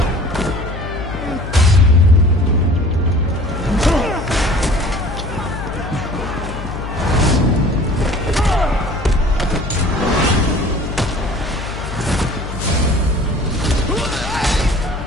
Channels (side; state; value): left; noise; hum, 8 dB below the sound